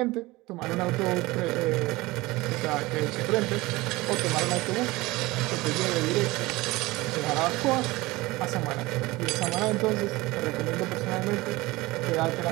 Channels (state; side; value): quieter; left; 20.7 dB